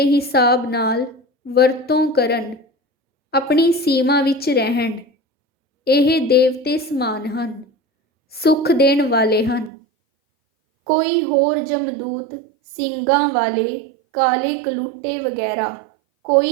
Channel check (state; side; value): drops out; left; at 9.7 s